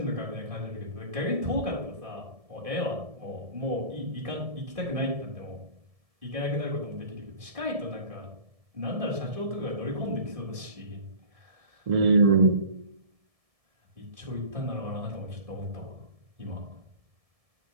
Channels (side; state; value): left; late; 1.7 ms